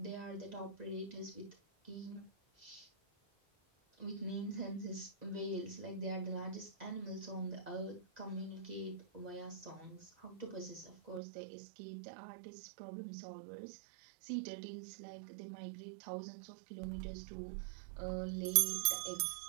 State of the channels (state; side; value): drops out; left; at 11.2 s